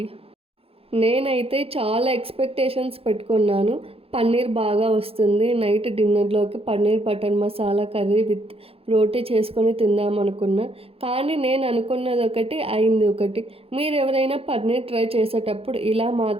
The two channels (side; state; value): left; late; 0.28 ms